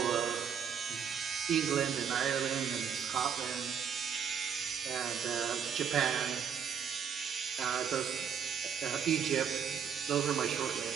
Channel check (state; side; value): quieter; left; 7.6 dB